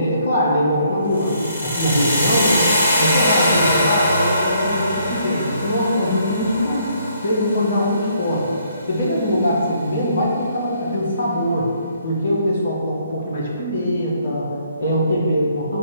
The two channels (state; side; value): inverted; both; correlation -0.67